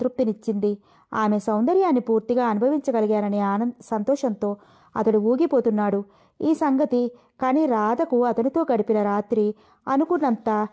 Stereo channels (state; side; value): identical; both; correlation 1.00